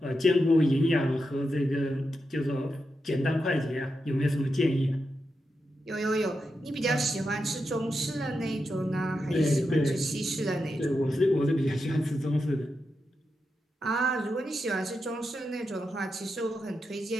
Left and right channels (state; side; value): normal; both; correlation 0.87